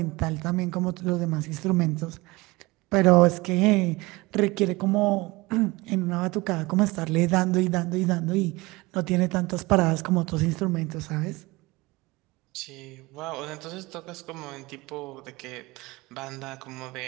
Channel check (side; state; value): left; quieter; 22.5 dB